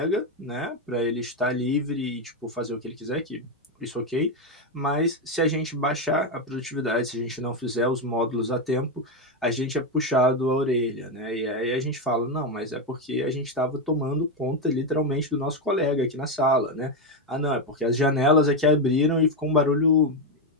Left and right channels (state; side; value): normal; both; correlation 0.07